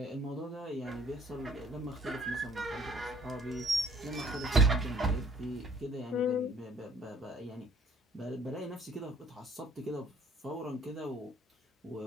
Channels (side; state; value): both; normal; correlation 0.58